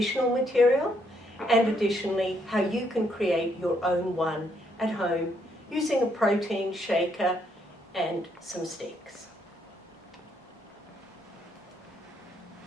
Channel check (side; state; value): both; normal; correlation 0.73